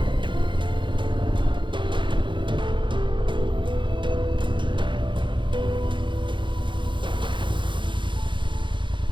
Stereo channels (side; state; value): left; late; 0.23 ms